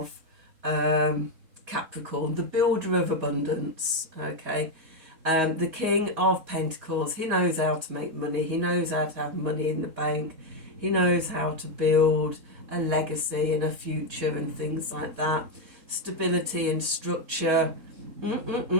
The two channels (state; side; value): late; left; 4.2 ms